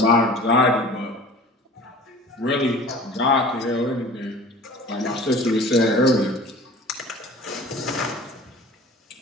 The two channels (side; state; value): both; normal; correlation 0.43